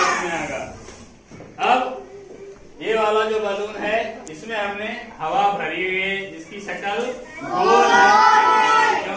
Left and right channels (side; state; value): both; identical; correlation 1.00